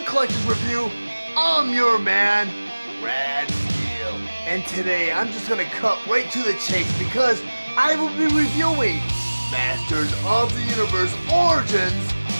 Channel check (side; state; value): both; inverted; correlation -1.00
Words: Review. I'm your man, Steele. And today I'm just gonna cut right to the chase because I will be reviewing Masters of the Universe Origins